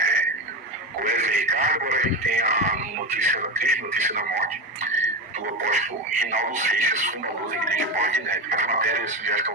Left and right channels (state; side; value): normal; both; correlation 0.20